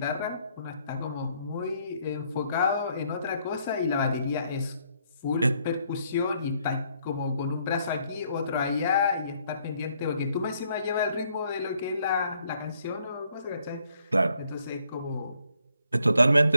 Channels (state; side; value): inverted; both; correlation -0.70